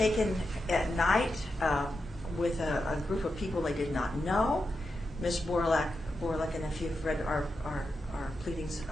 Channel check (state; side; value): normal; both; correlation 0.88